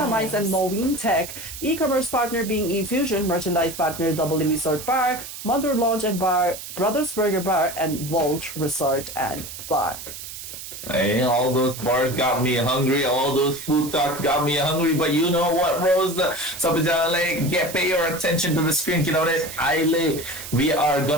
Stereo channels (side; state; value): right; noise; hiss, 11 dB below the sound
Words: Mice and Moeen Tech, e-commerce partner being eFusion, merchandise partner Double Resort Bar, Mother Lounge and Bar, Brothers Burger Bar, and Vault Resort and Bar. Hey, all those bars got me hungry. All those food talks got me hungry. But you know what, Rose? Pay your attention to the screen. You know that we are